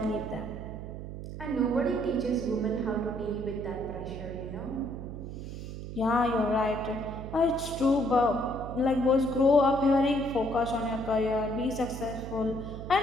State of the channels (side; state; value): right; noise; hum, 9 dB below the sound